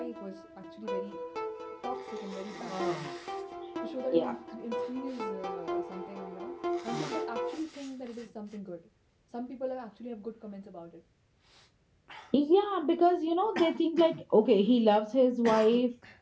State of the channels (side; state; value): both; identical; correlation 1.00